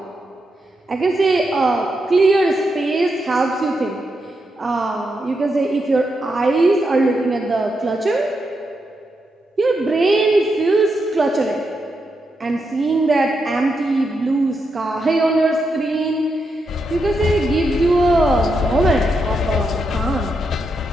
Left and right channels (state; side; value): normal; both; correlation 0.84